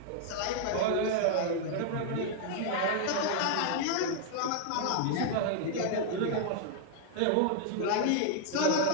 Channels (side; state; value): both; different; correlation 0.00